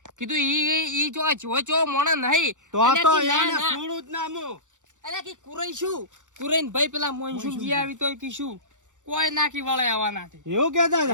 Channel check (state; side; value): late; left; 0.86 ms